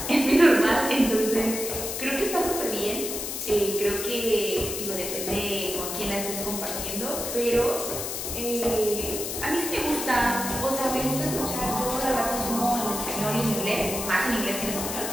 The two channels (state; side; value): noise; left; hiss, 5 dB below the sound